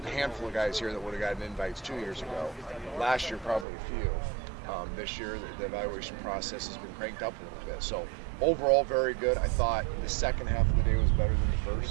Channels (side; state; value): left; drops out; at 3.7 s